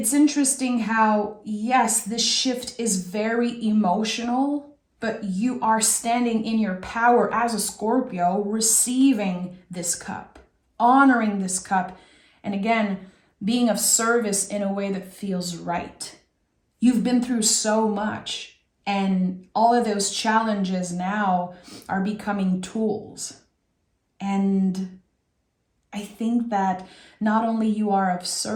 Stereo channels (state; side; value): identical; both; correlation 1.00